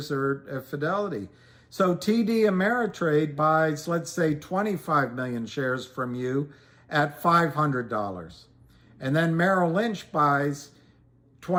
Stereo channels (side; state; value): both; identical; correlation 1.00